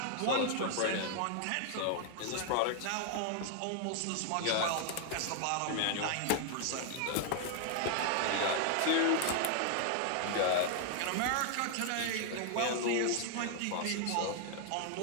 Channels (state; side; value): different; both; correlation 0.00